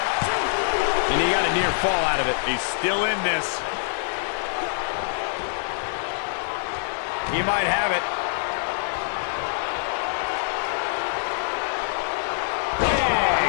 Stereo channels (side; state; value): right; silent; 62 dB below the other